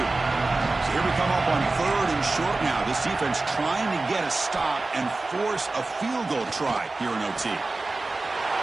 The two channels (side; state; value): left; quieter; 3.3 dB